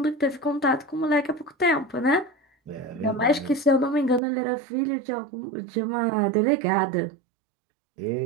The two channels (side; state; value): left; drops out; at 4.2 s